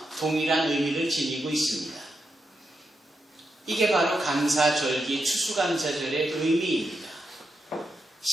동일한 의미를 지니고 있습니다. 이게 바로 감사절기 추수감사절의 의미입니다.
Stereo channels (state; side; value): normal; both; correlation 0.85